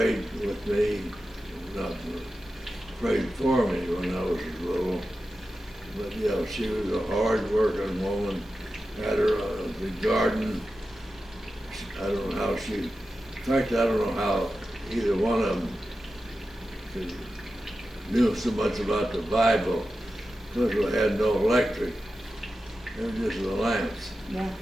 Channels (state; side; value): normal; both; correlation 0.92